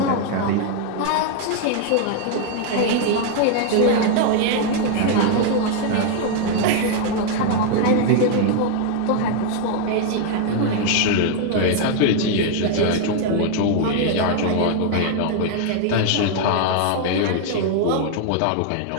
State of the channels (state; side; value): different; both; correlation 0.00